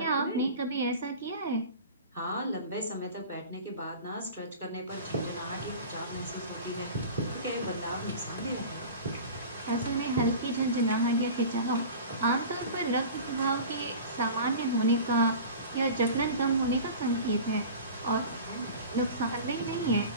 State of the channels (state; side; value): inverted; both; correlation -0.37